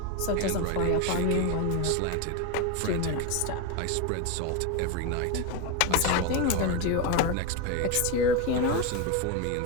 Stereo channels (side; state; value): both; different; correlation 0.03